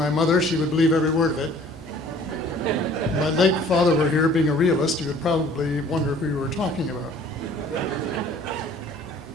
mother, she would believe every word of it. If my late father were here, being a realist, he would probably wonder who you were talking about.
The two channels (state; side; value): normal; both; correlation 0.53